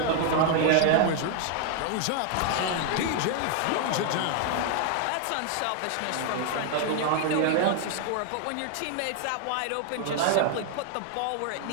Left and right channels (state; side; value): different; both; correlation 0.00